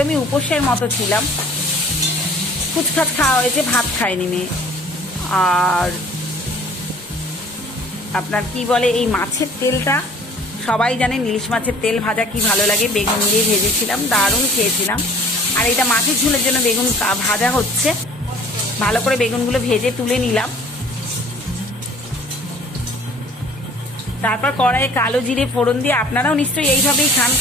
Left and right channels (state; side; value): normal; both; correlation 0.51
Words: উপোসের মতো ছিলাম, ফুচখাচ খাওয়া হয়েছে, ভাত খায়নি মেয়ে। আর আপনার কি বলে, এই মাছের তেলটা সবাই জানেন, ইলিশ মাছের তেল ভাজা কি ভালো লাগে। বেগুন দিয়ে ভেজেছিলাম, দারুণ খেয়েছিলাম। আর এটা মাছের ঝোলের জন্য বেগুন ভাজা হচ্ছে। ভালো করে বেগুনগুলো ভেজে তুলে নিলাম। তারপর কড়াইয়ে কালো জিরে ফোড়ন দিয়ে, আপনারাও নিশ্চয়ই এইভাবেই খান,